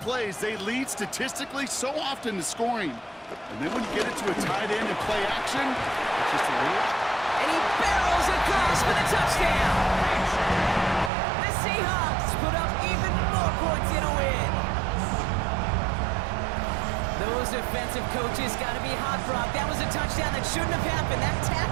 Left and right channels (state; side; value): drops out; left; at 11.1 s